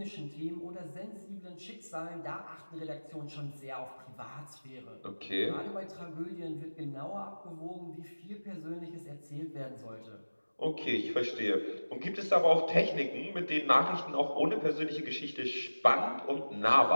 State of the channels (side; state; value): both; inverted; correlation -1.00